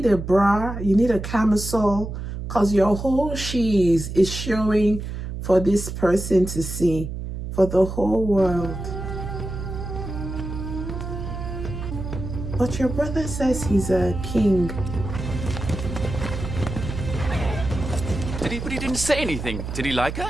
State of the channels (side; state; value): right; noise; hum, 6 dB below the sound